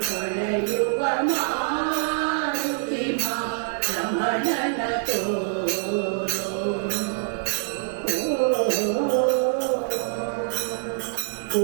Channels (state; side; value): silent; left; 57 dB below the other